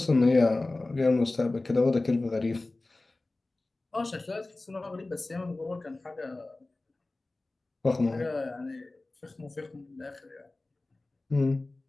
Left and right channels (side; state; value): right; quieter; 3.0 dB